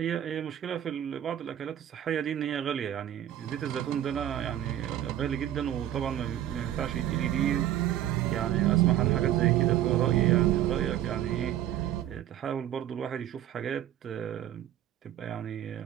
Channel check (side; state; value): left; quieter; 11.8 dB